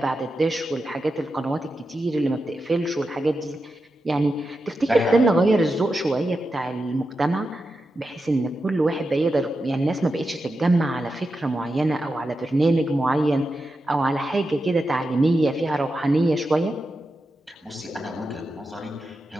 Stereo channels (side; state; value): both; normal; correlation 0.89